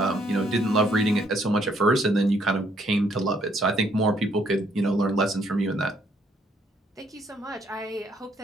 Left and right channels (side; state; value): both; normal; correlation 0.68